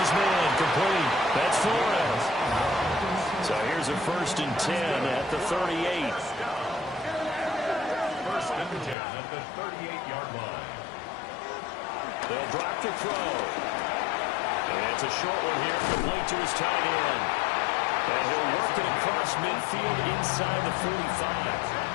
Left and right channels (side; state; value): right; drops out; at 9.0 s